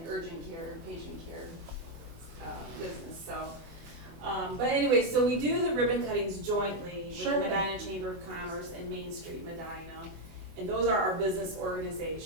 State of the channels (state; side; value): late; left; 24 ms